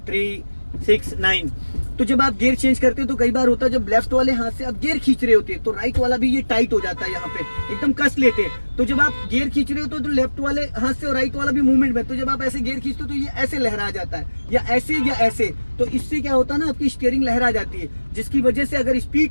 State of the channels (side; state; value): both; inverted; correlation -1.00